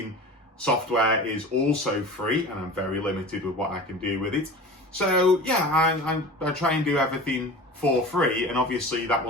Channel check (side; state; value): both; normal; correlation 0.36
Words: software is also free, and I'm very limited with what I can do with it. So yeah, I try and do everything for free, and obviously that